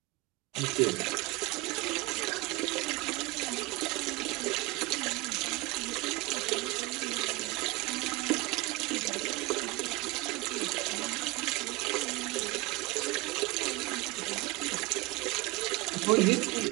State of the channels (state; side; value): quieter; left; 21.6 dB